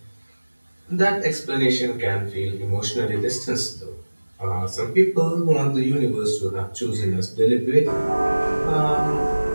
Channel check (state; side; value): inverted; both; correlation -1.00